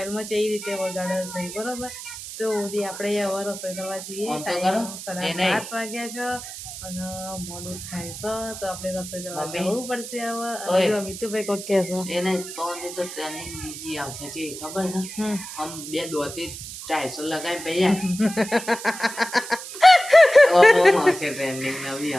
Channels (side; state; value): right; noise; hiss, 11 dB below the sound